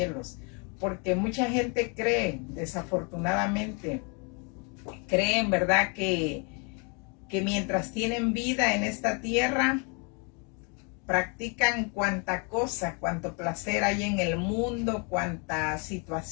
Porque mucha gente cree, desafortunadamente, creen, ¿verdad?, que mientras tienen vida en esta tierra, practican cuanta cosa, cuanto placer hay en el mundo, cuanta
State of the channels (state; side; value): quieter; right; 34.6 dB